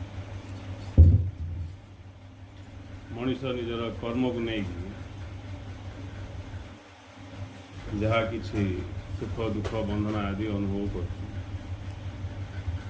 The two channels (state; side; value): identical; both; correlation 1.00